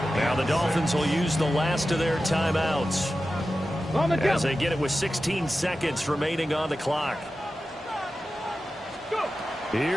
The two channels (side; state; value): both; normal; correlation 0.93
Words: Now the Dolphins will use the last of their timeouts as they get it with 16 seconds remaining on the clock.